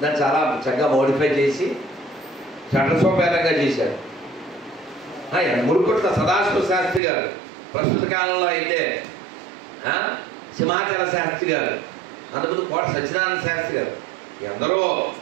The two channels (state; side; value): drops out; left; at 7.0 s